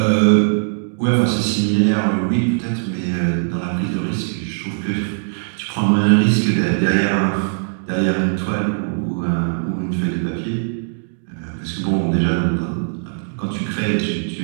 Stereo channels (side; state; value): left; silent; digital silence